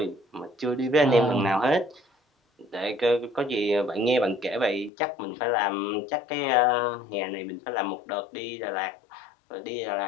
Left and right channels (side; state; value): right; drops out; at 4.9 s